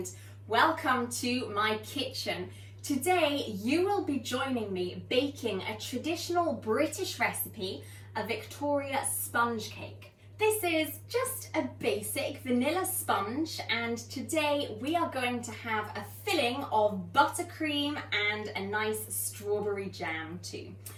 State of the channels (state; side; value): identical; both; correlation 1.00